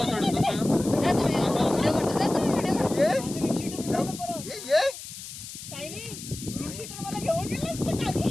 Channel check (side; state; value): left; noise; hiss, 12 dB below the sound